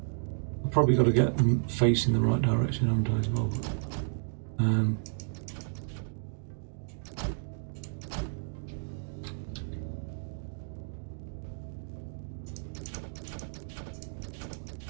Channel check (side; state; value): left; silent; digital silence